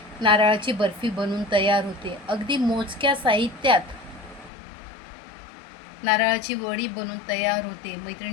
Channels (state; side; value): drops out; right; at 4.5 s